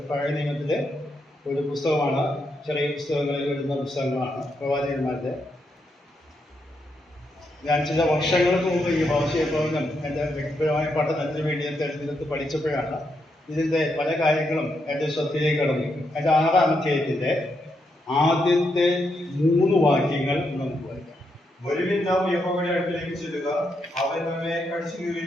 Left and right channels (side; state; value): both; normal; correlation 0.81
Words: പഴയ നിയമത്തിലെ ഒരു പുസ്തകമാണ്. ചെറിയ പുസ്തകങ്ങളിൽ വരുന്ന പുസ്തകങ്ങളാണ് പ്രവാചകന്മാരുടെ. ഞാൻ ചില വർഷങ്ങൾക്ക് മുമ്പ് ഈ ഹോശേയ പ്രവചനം എൻ്റെ വ്യക്തിപരമായ പഠനത്തിന് വേണ്ടി ഞാൻ തെരഞ്ഞെടുത്ത് പഠിച്ചപ്പോഴാണ് ഇതിൻ്റെ പല കാര്യങ്ങളും എൻ്റെ ശ്രദ്ധയിലേക്ക് കടന്നു. അതിൻ്റെ 6-ാം അധ്യായത്തിൻ്റെ ആദ്യത്തെ 3 വാക്യങ്ങൾ നമുക്ക് വായിക്കാം. വരുവിൻ, നാം യഹോവയുടെ അടുക്കലേക്ക് ചെല്ലുക. അവൻ നമ്മെ കടിച്ചു